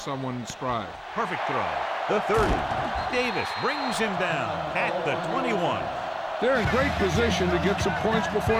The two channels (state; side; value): identical; both; correlation 1.00